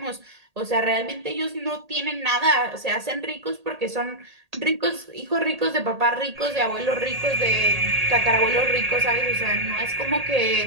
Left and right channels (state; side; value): late; left; 1.8 ms